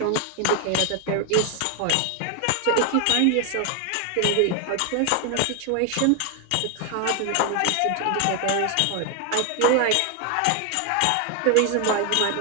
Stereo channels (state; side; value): different; both; correlation 0.01